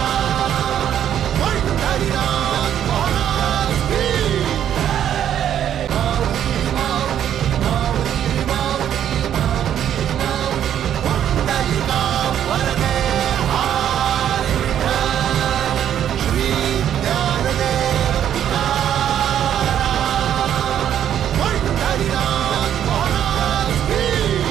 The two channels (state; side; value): quieter; left; 10.1 dB